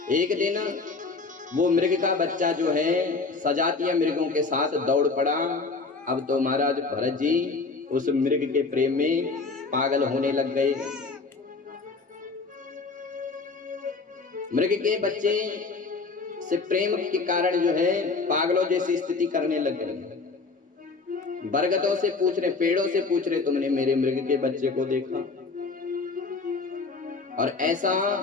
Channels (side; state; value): right; quieter; 4.1 dB